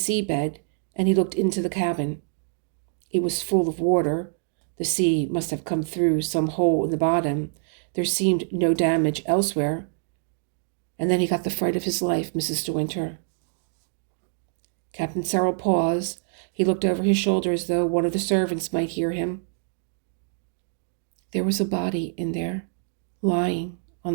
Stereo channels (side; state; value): left; silent; digital silence